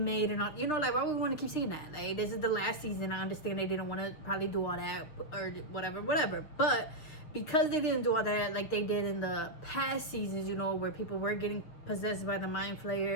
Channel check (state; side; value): late; right; 6.8 ms